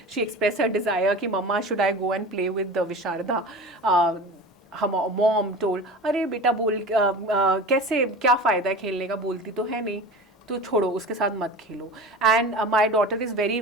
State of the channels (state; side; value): normal; both; correlation 0.34